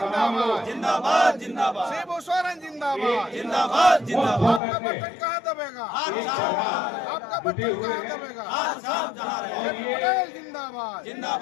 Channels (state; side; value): drops out; right; at 4.6 s